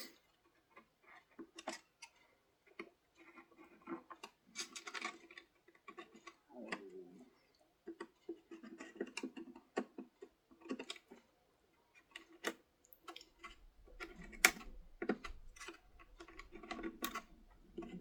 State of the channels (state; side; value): identical; both; correlation 1.00